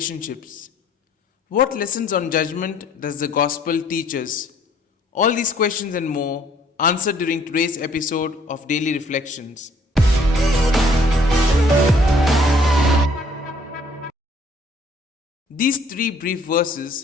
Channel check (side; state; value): both; normal; correlation 0.60